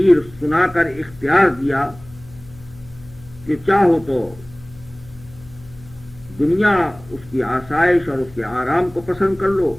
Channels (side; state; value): left; noise; hum, 21 dB below the sound